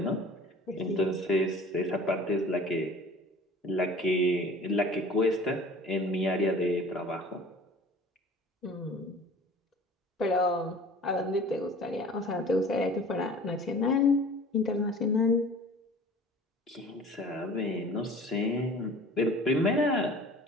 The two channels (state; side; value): normal; both; correlation 0.45